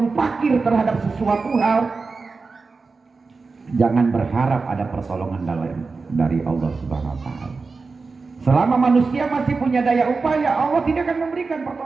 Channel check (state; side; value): quieter; left; 4.3 dB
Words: fakir terhadap sesuatu hal, jangan berharap ada pertolongan dari Allah Subhanahu wa taala. Selama manusia masih punya daya upaya, Allah tidak akan memberikan